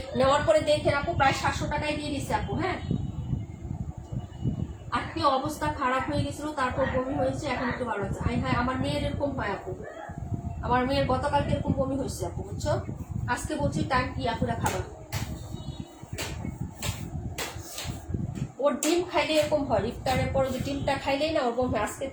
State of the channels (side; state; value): both; identical; correlation 1.00